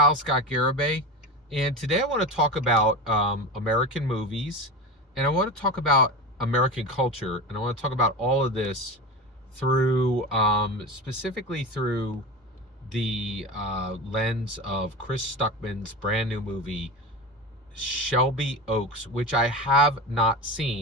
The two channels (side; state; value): both; normal; correlation 0.24